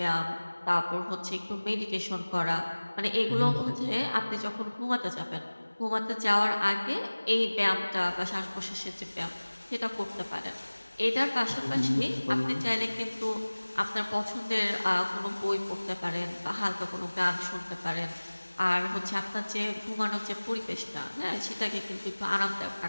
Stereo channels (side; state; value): both; inverted; correlation -1.00